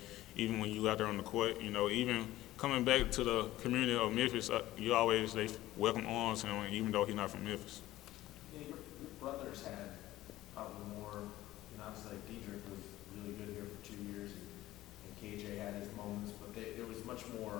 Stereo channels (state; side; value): quieter; right; 15.8 dB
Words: even when you out there on the court. Even coming back to the community of Memphis, they welcome arms him, even though he's not from Memphis. Yeah, your brothers had probably more, obviously Diedrich was really good here for 2 years, and KJ had his moments, but there was much